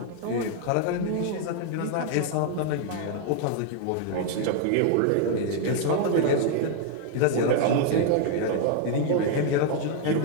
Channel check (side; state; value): both; different; correlation 0.00